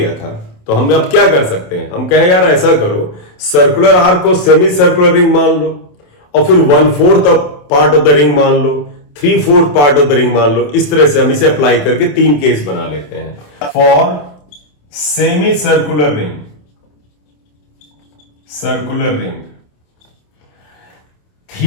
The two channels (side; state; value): right; late; 27 ms